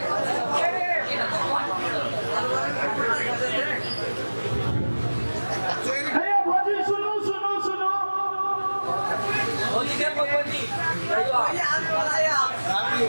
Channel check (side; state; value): both; inverted; correlation -1.00